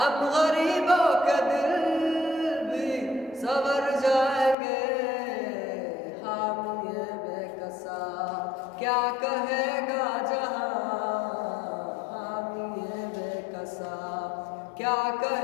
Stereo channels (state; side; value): drops out; right; at 4.5 s